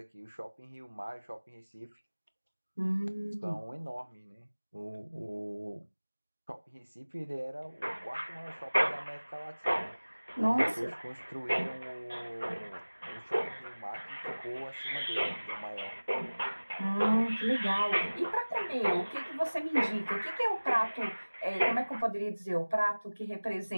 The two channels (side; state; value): both; inverted; correlation -1.00